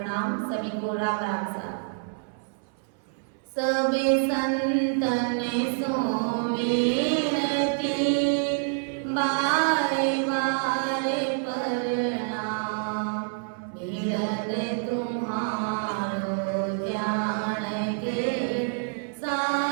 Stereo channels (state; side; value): silent; left; 60 dB below the other